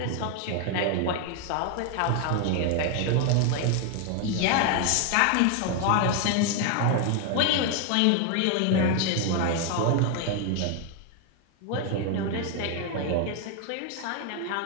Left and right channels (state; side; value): different; both; correlation 0.01